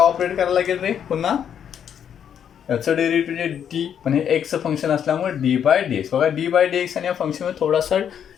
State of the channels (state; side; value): quieter; right; 8.7 dB